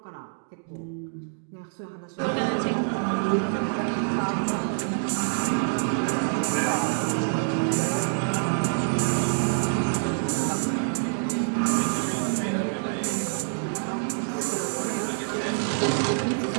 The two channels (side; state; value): left; silent; digital silence